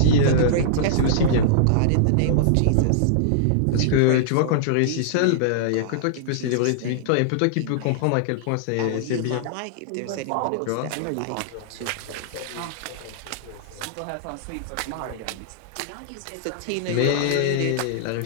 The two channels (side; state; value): both; different; correlation -0.02